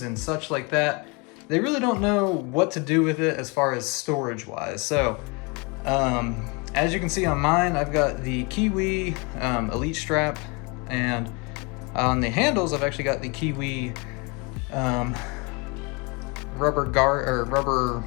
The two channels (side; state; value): right; quieter; 30.1 dB